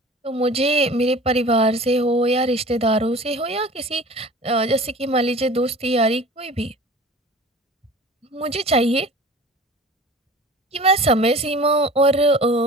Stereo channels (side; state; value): both; normal; correlation 0.41